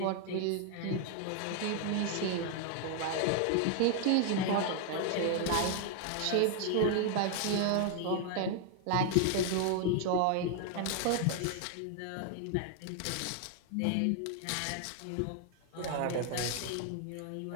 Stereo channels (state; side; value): different; both; correlation 0.00